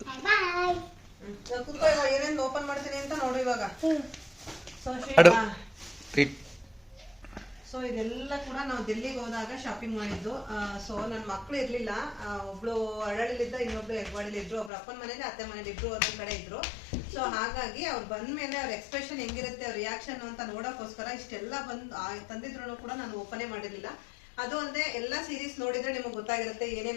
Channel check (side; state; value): right; drops out; at 14.7 s